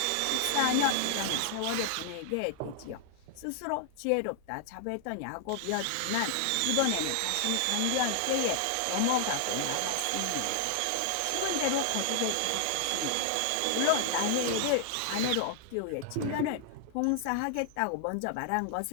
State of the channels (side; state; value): both; different; correlation 0.00